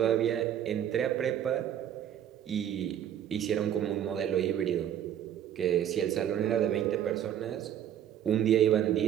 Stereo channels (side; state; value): left; quieter; 10.3 dB